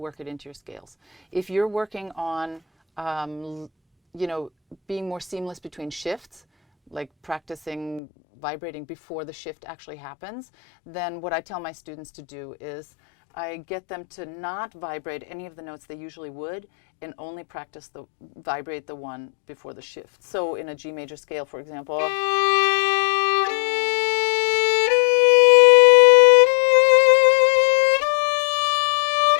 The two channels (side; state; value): right; drops out; at 8.0 s